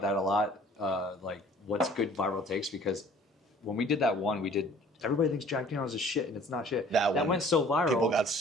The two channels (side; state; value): both; normal; correlation 0.52